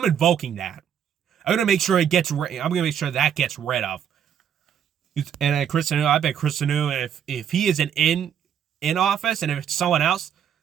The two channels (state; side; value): quieter; left; 8.8 dB